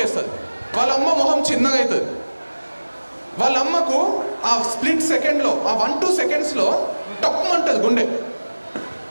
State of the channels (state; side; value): inverted; both; correlation -1.00